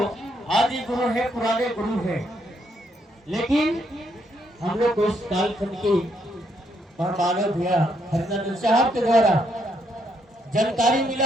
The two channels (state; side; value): normal; both; correlation 0.75